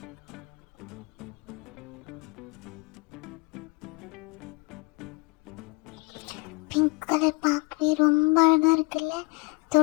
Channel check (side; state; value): right; quieter; 28.3 dB